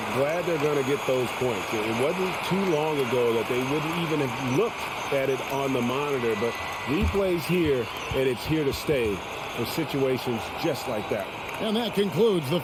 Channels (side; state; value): both; identical; correlation 1.00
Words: glad they're going to get those points. It wasn't too long ago that they wouldn't even have looked at it on the monitor, but replay's here, and it's here to stay for situations just like that. And that concludes the